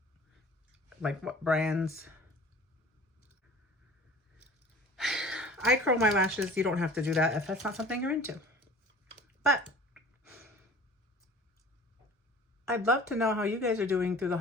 Like what brands. I curl my lashes. You don't have to do that if that's not something you're into. But I'd love to know how you guys are doing through the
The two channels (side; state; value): both; normal; correlation 0.44